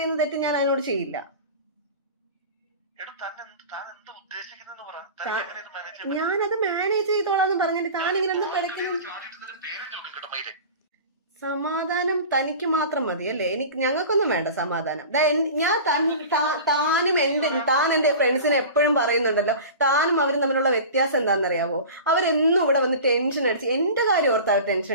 തെറ്റ് ഞാൻ അതിനോട് ചെയ്യില്ല. ഞാനത് മാനേജ് ചെയ്തോളാന്ന് പറഞ്ഞിട്ട് താനിങ്ങനെ എന്താ പഠിക്കണം? സമാധാനം തനിക്ക് മാത്രം മതി അല്ലേ? ഞങ്ങൾക്കൊന്നും വേണ്ട സമാധാനം. താൻ എന്റെ ഫ്രണ്ട്സിനെ എപ്പോഴും പറയുന്നുണ്ടല്ലോ, താനും അവരും തമ്മിലുള്ള വ്യത്യാസം എന്താണെന്നറിയാവോ? അവരെന്നും ഇവിടെ വന്ന് ടെൻഷൻ അടിച്ച് എന്റെ കാര്യം ഓർത്താ അവർ ടെൻഷൻ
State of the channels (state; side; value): inverted; both; correlation -0.35